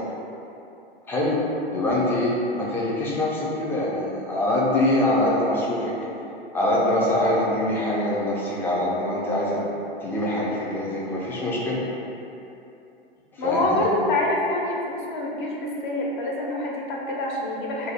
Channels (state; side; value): normal; both; correlation 0.24